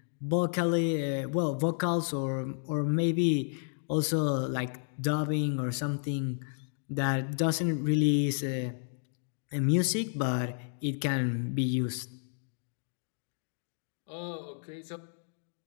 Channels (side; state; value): right; silent; digital silence